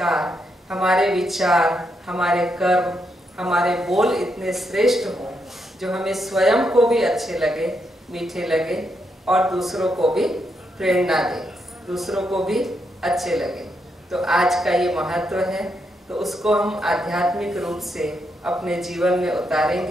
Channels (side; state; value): both; normal; correlation 0.80